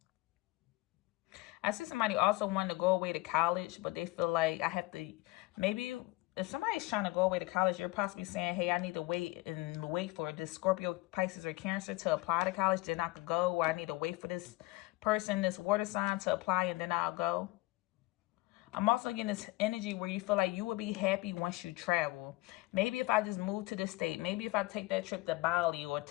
I see somebody also wanting to go away to college, but they feel like maybe if somebody's trying to go away to college, you're possibly saying, hey, I need to wait for this Scorpio, Pisces, or Cancer to apply to college, then I could go, or I need to wait for this person, this water sign, to apply, and then I'll go. I'm also getting this energy where you feel like you will be happy once you travel. Maybe if I just move to this state, maybe if I take that trip to Bali or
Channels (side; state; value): right; quieter; 21.2 dB